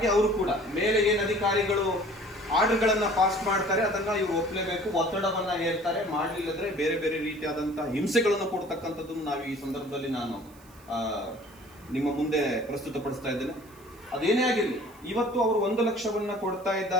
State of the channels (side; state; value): right; noise; hiss, 26 dB below the sound